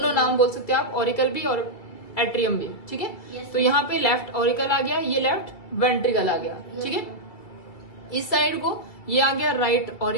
नाम बोल सकते हैं आप, ऑरिकल भी और एट्रियम भी, ठीक है। तो यहाँ पे लेफ्ट ऑरिकल आ गया, ये लेफ्ट वेंट्रिकल आ गया, ठीक है। इस साइड को ये आ गया राइट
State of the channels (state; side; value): late; right; 2.3 ms